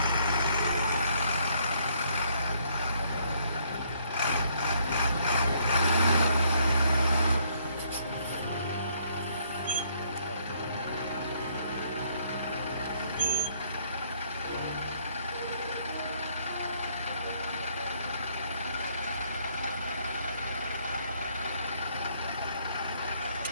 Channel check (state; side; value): inverted; both; correlation -0.67